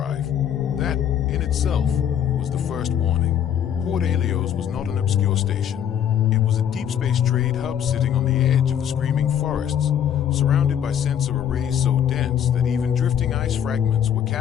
That, in itself, was the first warning. Port Helios was not an obscure station. It was a deep space trade hub sitting on the edge of the screaming forests, surrounded by sensor arrays so dense that even drifting ice fragments were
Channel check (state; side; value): quieter; right; 9.3 dB